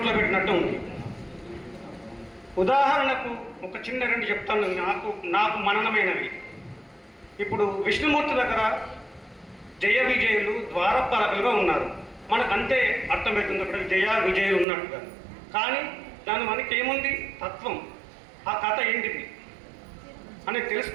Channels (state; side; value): drops out; left; at 14.7 s